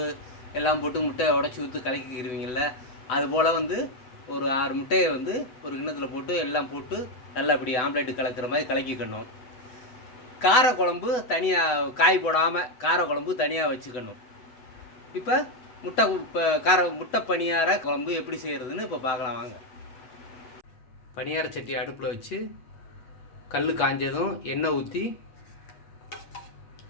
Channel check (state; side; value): late; right; 7.9 ms